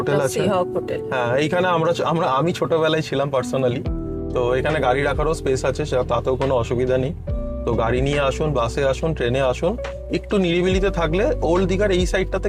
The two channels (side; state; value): both; identical; correlation 1.00